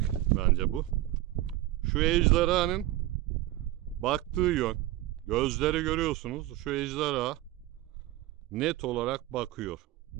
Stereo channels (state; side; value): quieter; left; 15.8 dB